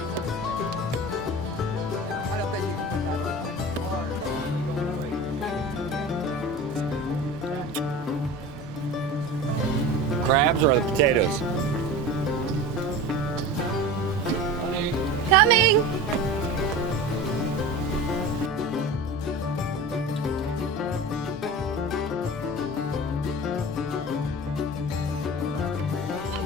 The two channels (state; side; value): normal; both; correlation 0.33